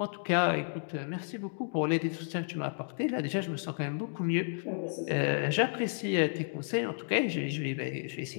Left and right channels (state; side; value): silent; right; digital silence